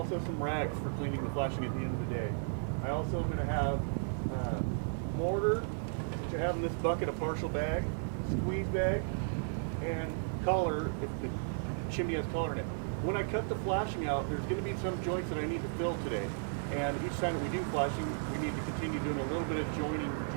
some rags for cleaning the flashing at the end of the day. I also am going to have mortar, which I have in this bucket, a partial bag, squeeze bag, and color if the chimney has color in it. When I cut the flashing out, there's going to be some joints that I need to fill today. And each time that we do flashing, we need to continue doing a little bit of joint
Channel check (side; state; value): left; silent; digital silence